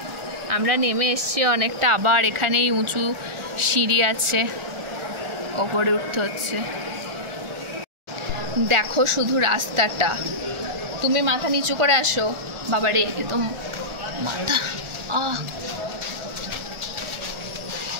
আমরা নেমে এসছি অনেকটা, আবার এখানেই উঁচু সিঁড়ি আছে, ওপরে উঠতে হচ্ছে। দেখো শুধু রাস্তাটা। তুমি মাথা নিচু করে আসো। বাবারে, এ তো মাথা।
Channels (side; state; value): left; late; 1.4 ms